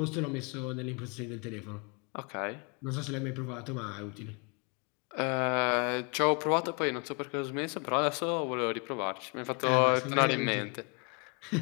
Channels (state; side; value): quieter; right; 34.7 dB